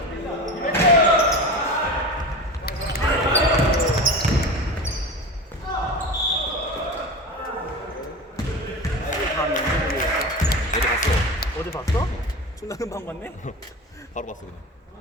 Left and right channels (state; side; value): normal; both; correlation 0.29